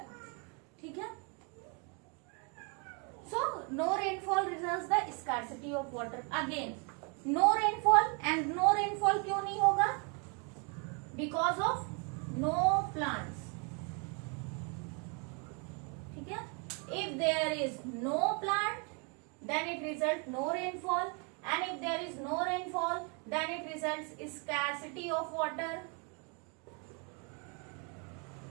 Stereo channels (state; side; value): quieter; left; 35.3 dB